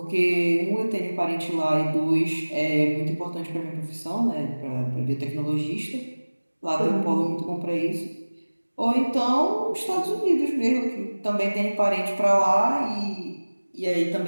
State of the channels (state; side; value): inverted; both; correlation -1.00